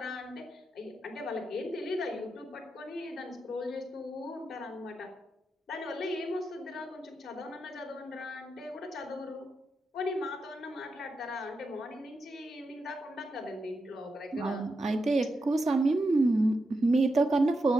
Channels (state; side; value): normal; both; correlation 0.86